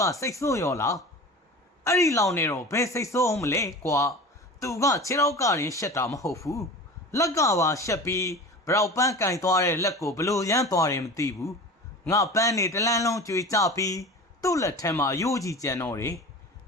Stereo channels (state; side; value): normal; both; correlation 0.35